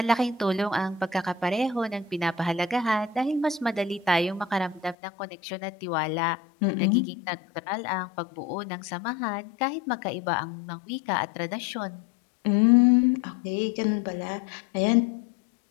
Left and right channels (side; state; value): right; drops out; at 5.0 s